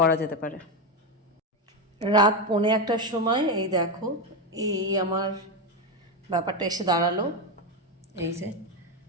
যেতে পারে রাত 1:45টার সময় এই দেখো এই আমার ব্যাপারটা এসে দাঁড়ালো এই যে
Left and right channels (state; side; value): normal; both; correlation 0.11